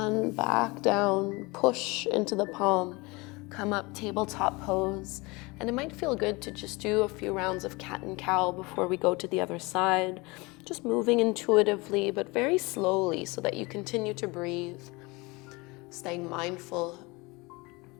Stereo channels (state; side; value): quieter; right; 25.1 dB